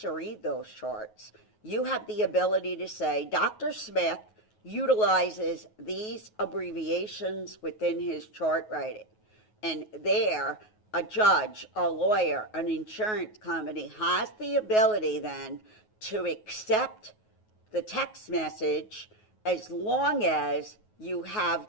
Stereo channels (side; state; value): right; late; 9.4 ms